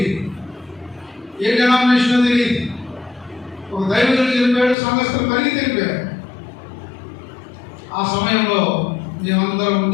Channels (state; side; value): drops out; right; at 4.8 s